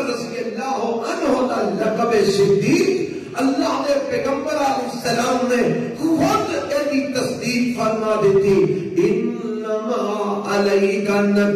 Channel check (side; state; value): both; identical; correlation 1.00